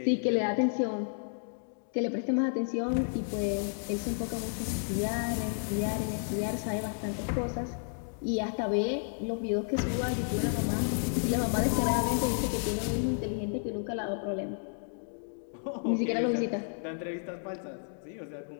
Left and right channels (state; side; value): silent; right; digital silence